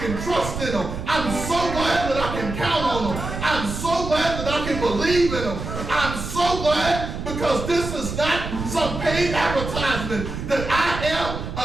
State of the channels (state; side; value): noise; right; rumble, 6 dB below the sound